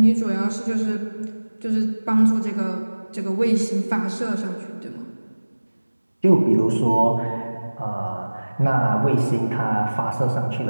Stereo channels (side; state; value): both; inverted; correlation -1.00